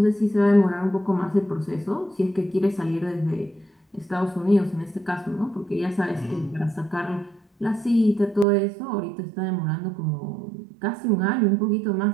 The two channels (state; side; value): drops out; left; at 8.5 s